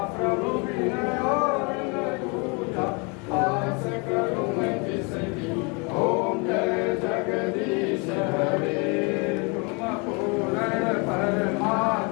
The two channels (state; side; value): quieter; right; 31.7 dB